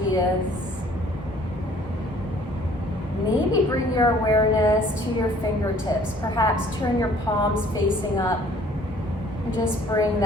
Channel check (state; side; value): normal; both; correlation 0.56